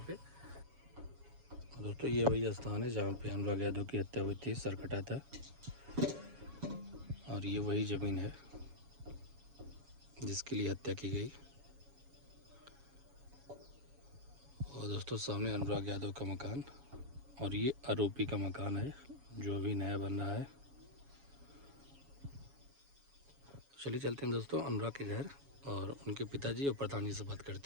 पे। दोस्तों ये वही स्थान है जहाँ पे अनुराग यादव की हत्या हुई थी, सर कटा था। और ये वही ज़मीन है जिसके लिए हत्या की गई। और दोस्तों सामने अनुराग यादव का मकान और ये आरोपी का मकान है जो अभी नया बन रहा है। चलिए चलते हैं दोस्तों अनुराग के घर और उनके पिताजी और प्रधान जी से बात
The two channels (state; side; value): late; left; 7.2 ms